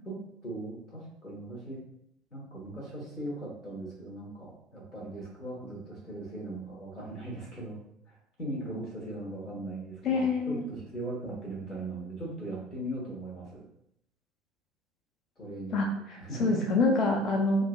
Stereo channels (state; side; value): normal; both; correlation 0.43